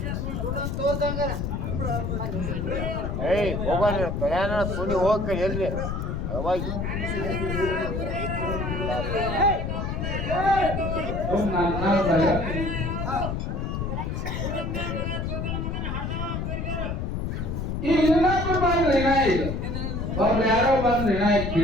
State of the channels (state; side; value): noise; left; rumble, 2 dB below the sound